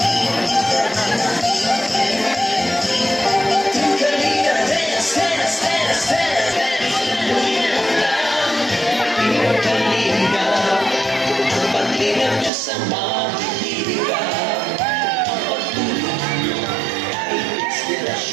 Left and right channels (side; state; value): left; drops out; at 12.5 s